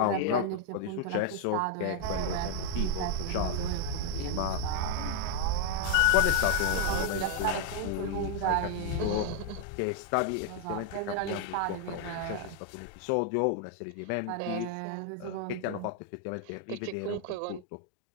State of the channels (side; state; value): both; different; correlation 0.00